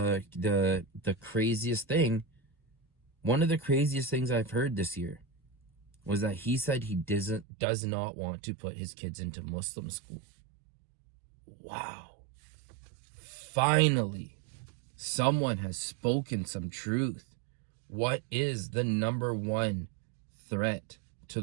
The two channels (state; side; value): drops out; left; at 7.5 s